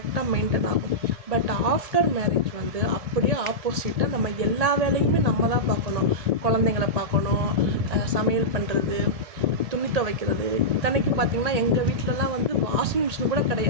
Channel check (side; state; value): left; late; 1.8 ms